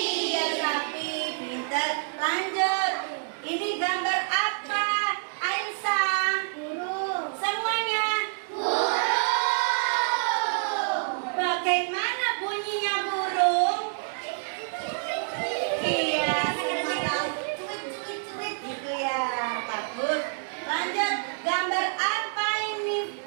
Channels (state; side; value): silent; left; 60 dB below the other